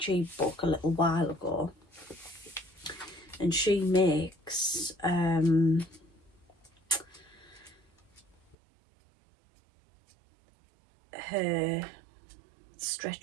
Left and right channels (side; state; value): left; drops out; at 8.6 s